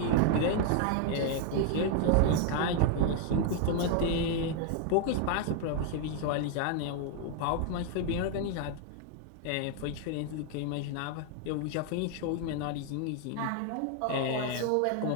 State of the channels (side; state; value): both; different; correlation 0.00